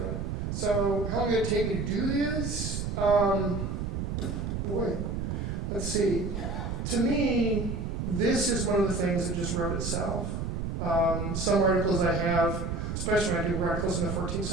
So how long did it take me to do this? Boy, let's see. To me, this is one of the things that just wrote itself. Some articles I have, especially when I do articles in the 14th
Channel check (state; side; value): noise; right; rumble, 3 dB below the sound